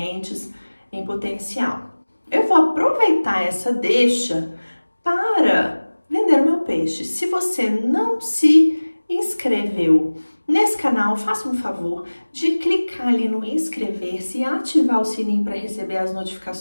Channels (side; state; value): both; inverted; correlation -1.00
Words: em potencial. Eu vou aproveitar essa deixa para vender o meu peixe. Se você não se inscreveu nesse canal, faça um favor de clicar ali no inscrever-se e ativar o sininho para receber as